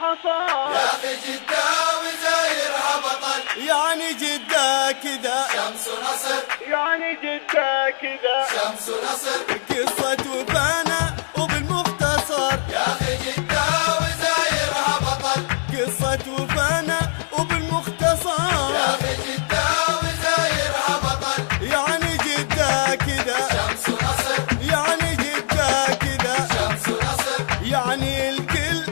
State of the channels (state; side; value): silent; right; 60 dB below the other